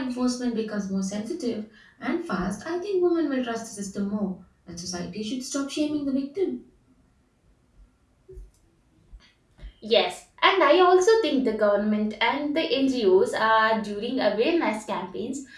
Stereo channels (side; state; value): both; identical; correlation 1.00